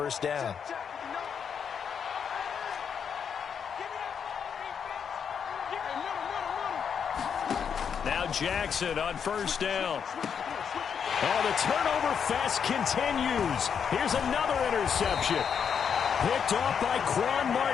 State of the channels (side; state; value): right; quieter; 7.2 dB